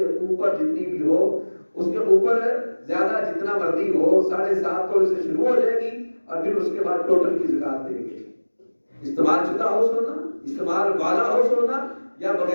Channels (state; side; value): inverted; both; correlation -1.00